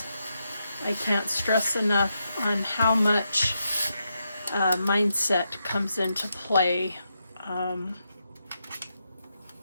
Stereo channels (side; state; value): both; inverted; correlation -0.84